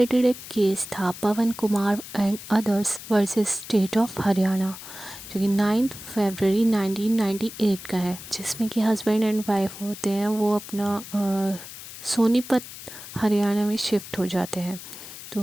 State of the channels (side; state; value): left; noise; hiss, 13 dB below the sound